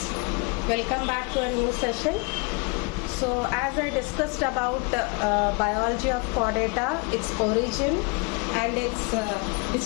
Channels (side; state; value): right; quieter; 31.8 dB